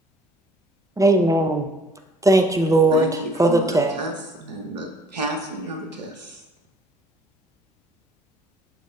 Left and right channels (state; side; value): normal; both; correlation 0.58